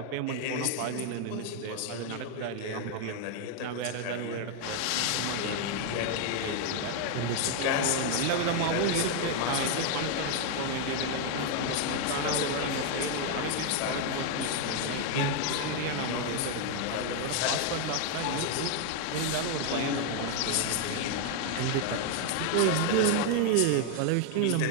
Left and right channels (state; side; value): different; both; correlation 0.00